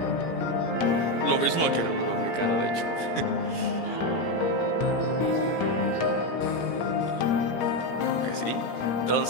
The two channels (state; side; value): late; right; 17 ms